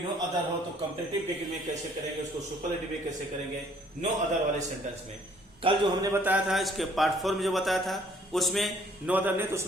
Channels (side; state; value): both; normal; correlation 0.60